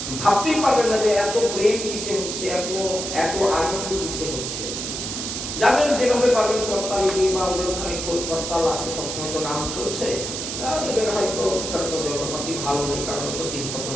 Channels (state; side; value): noise; right; hiss, 4 dB below the sound